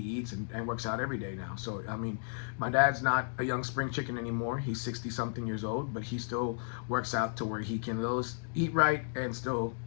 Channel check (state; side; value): silent; right; digital silence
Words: and works out every day now. So, I mean, my dad's not a young spring chicken anymore. He's 60-something years old, but he still works out to where he can eat right and still